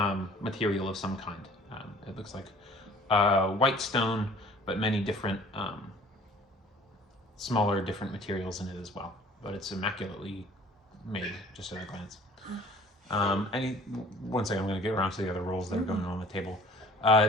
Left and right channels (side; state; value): both; normal; correlation 0.51